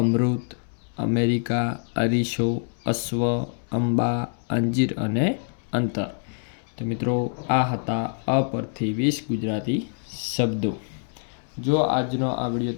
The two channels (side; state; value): right; silent; digital silence